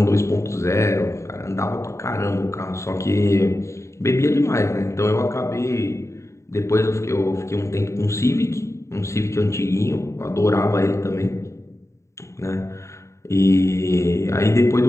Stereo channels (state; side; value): late; right; 0.14 ms